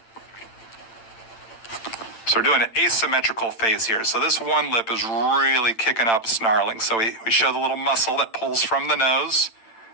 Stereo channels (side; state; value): right; late; 8.9 ms